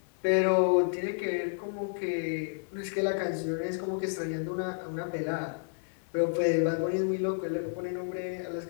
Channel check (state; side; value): silent; right; 57 dB below the other